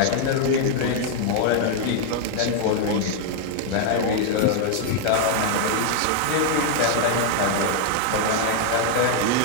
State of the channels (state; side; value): different; both; correlation 0.00